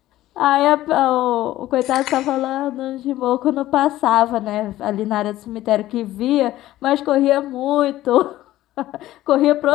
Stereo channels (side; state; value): right; quieter; 15.0 dB